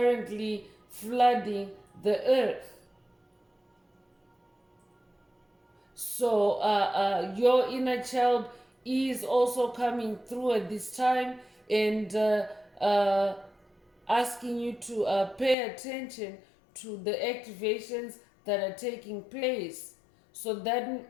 flooding the earth. So your inner child is also coming through at this time. and asking you to pay attention to the activations that are taking place. So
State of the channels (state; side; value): drops out; right; at 15.6 s